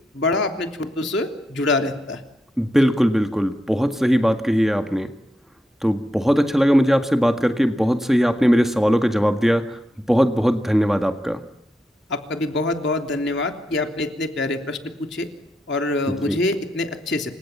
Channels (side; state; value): both; normal; correlation 0.84